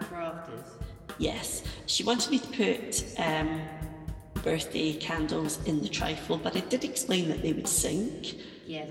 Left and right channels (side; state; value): both; identical; correlation 1.00